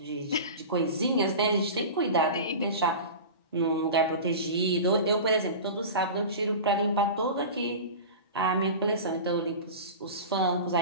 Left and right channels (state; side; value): inverted; both; correlation -0.31